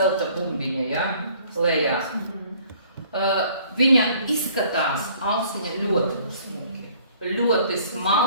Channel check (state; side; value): inverted; both; correlation -0.56